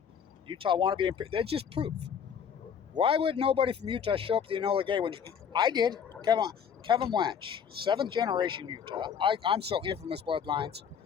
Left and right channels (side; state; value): right; quieter; 7.5 dB